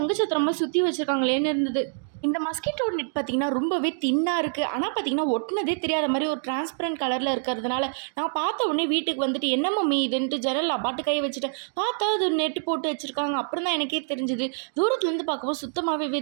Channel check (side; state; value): left; silent; digital silence